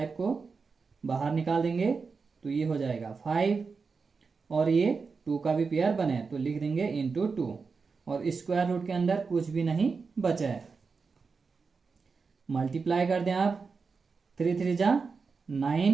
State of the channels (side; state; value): left; quieter; 4.9 dB